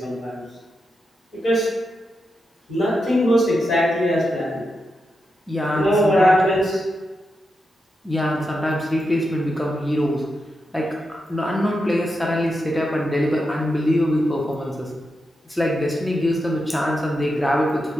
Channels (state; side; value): normal; both; correlation 0.87